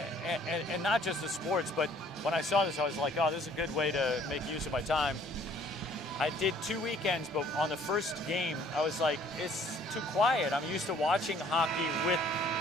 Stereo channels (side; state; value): both; normal; correlation 0.58